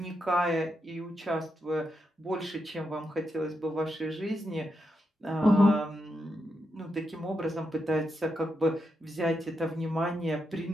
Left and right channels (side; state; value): both; normal; correlation 0.84